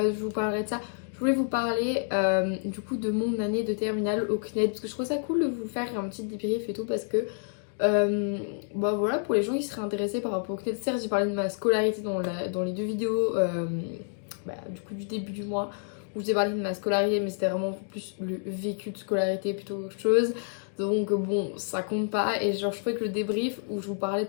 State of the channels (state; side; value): silent; right; 59 dB below the other